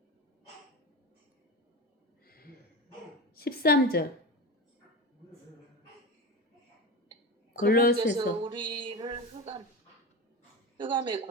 (13절) 그분께서 골로새서 우리를 흑암의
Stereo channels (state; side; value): normal; both; correlation 0.24